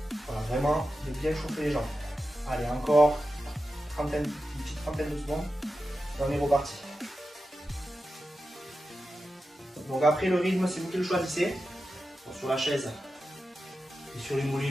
Voilà, vraiment de bien chauffer les jambes. Allez, encore une petite trentaine de secondes et on est reparti. Donc après le rythme, c'est vous qui le choisissez. Donc, sur la chaise et sur les mollets,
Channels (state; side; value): normal; both; correlation 0.91